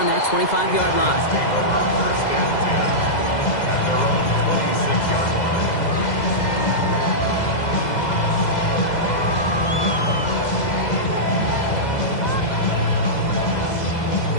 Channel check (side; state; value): right; late; 2.0 ms